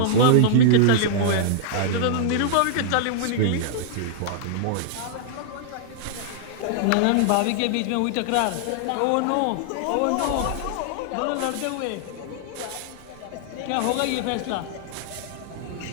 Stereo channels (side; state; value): both; different; correlation -0.01